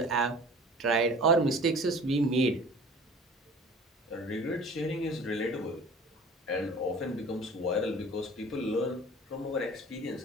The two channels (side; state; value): both; normal; correlation 0.44